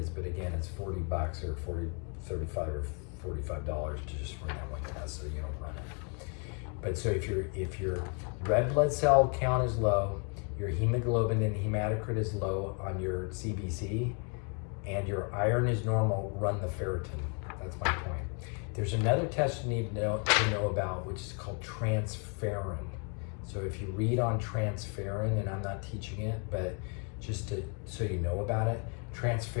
but again, it's $40 or 35 or $45 to just run that one test so you don't run it. But so if your red blood cell count is low, your hemoglobin and hematocrit is low on your CBC, and your iron is normal, run the ferritin. That's my point. There's another test you need to know about, which is called transferrin. So if you read on transferrin, and I'm not teaching it, but just so you know about it,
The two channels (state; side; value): quieter; right; 38.5 dB